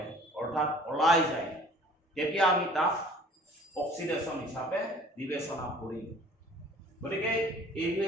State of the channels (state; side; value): normal; both; correlation 0.50